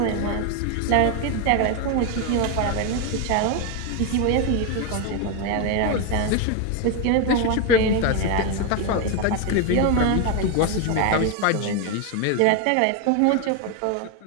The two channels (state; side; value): different; both; correlation 0.01